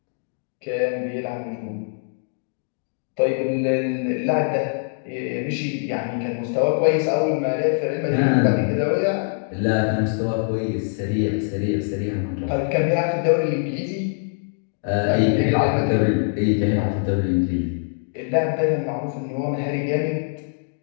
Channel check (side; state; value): right; silent; digital silence